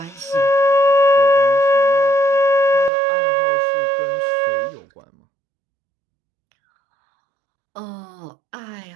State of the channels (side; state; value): left; drops out; at 2.9 s